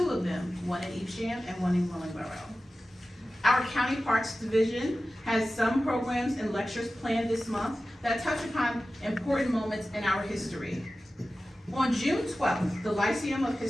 of them, one in Evesham and one in Willingboro. Our County Parks Division has some programs and lectures planned this month that touch upon important moments in our history. On June 12th, the Lyceum of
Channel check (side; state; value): both; normal; correlation 0.95